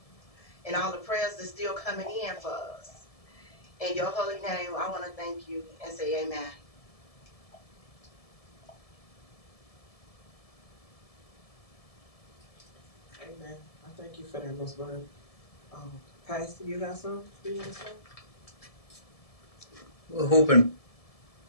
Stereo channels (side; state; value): right; late; 1.7 ms